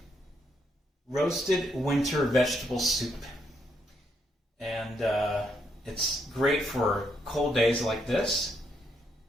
roasted winter vegetable soup. And it's great for cold days like this.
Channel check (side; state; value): both; normal; correlation 0.76